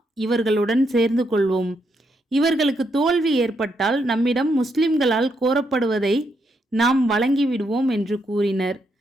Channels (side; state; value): both; normal; correlation 0.78